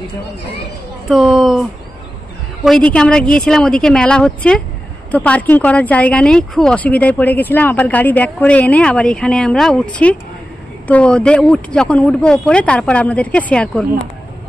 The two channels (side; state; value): both; normal; correlation 0.93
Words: তো ওইদিকে আমরা গিয়েছিলাম, ওদিকে মেলা হচ্ছে, তো পার্কিং করার জায়গা নেই, খুব অসুবিধায় পড়ে গেছিলাম। আবার গাড়ি ব্যাক করে এনে আবার এখানে আমরা উঠছি। তো যখন উঠবো ওপরে তারপর আপনাদেরকে শেয়ার করব।